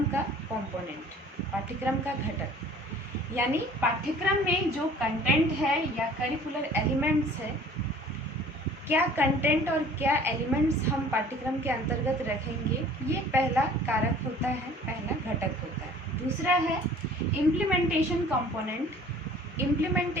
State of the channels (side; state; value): both; normal; correlation 0.50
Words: का कंपोनेंट, पाठ्यक्रम का घटक। यानी पाठ्यक्रम में जो कंटेंट है या करिकुलर एलिमेंट्स है, क्या कंटेंट और क्या एलिमेंट्स हम पाठ्यक्रम के अंतर्गत रखेंगे, ये पहला कारक होता है, पहला घटक होता है। दूसरा है इम्प्लीमेंटेशन कंपोनेंट।